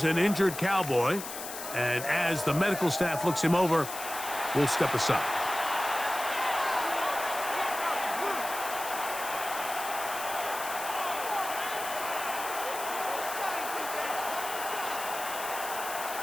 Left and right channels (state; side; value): noise; left; hiss, 8 dB below the sound